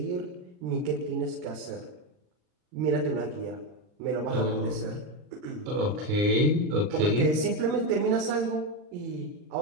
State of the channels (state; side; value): late; left; 39 ms